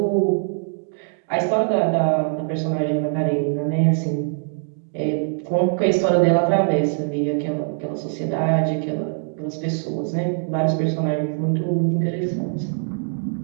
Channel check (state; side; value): silent; left; digital silence